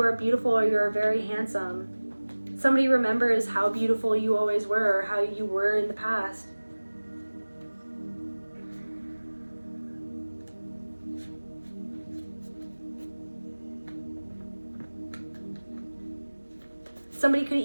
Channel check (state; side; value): inverted; both; correlation -1.00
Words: are beautiful or you are very handsome. Somebody remembers how beautiful you always were or how you were in the past. Somebody could